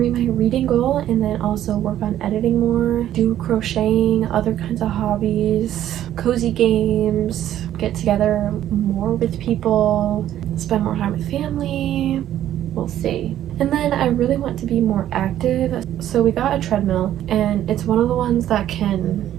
my reading goal and then also work on editing more, do crocheting, other kinds of hobbies, cozy games, get together more with people, spend more time with family. We'll see. And then I really want to be more active, so we got a treadmill, and it's one of the ones that can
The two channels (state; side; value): quieter; left; 11.9 dB